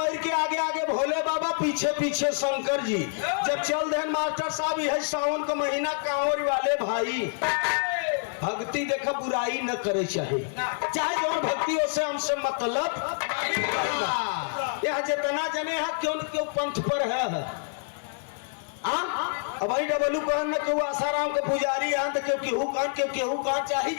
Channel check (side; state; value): right; silent; 60 dB below the other